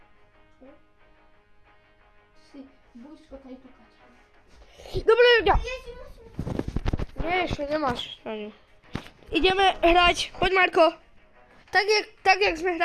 Si blízko tady tukať. Dobre, ľudia. Nie, ešte nemáš. Ani. Ideme hrať. Poď, Marko. Tak jak sme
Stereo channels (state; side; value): identical; both; correlation 1.00